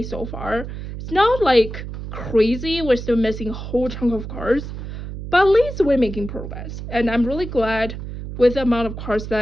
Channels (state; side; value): noise; right; hum, 9 dB below the sound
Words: so far. It's not like crazy, we're still missing a whole chunk of cards, but at least we're making progress. And I'm really glad with the amount of cards